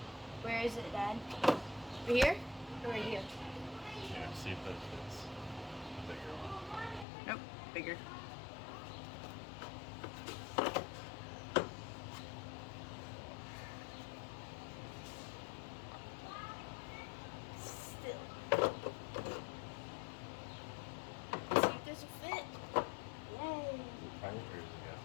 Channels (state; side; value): drops out; right; at 7.1 s